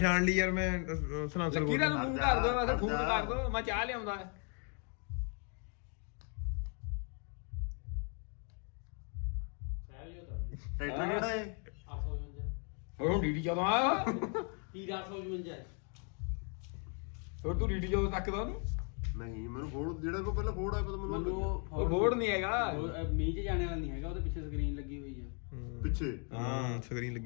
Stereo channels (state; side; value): quieter; right; 39.5 dB